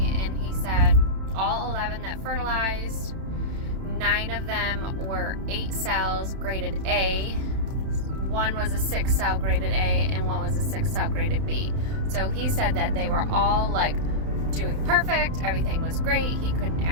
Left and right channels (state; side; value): late; left; 31 ms